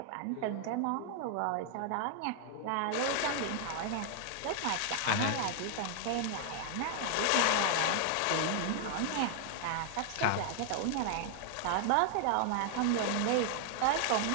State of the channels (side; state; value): both; different; correlation 0.00